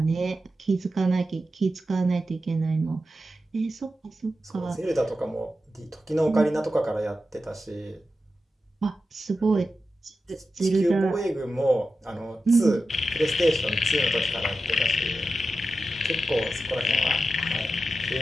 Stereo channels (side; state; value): both; normal; correlation 0.91